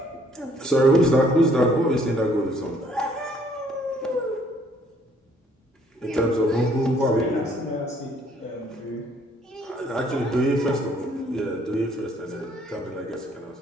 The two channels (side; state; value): both; normal; correlation 0.63